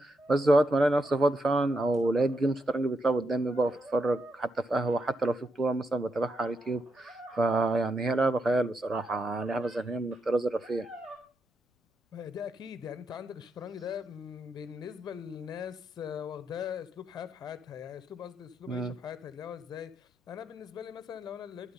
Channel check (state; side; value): normal; both; correlation 0.82